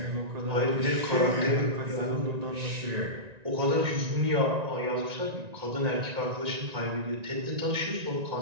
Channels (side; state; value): left; late; 1.9 ms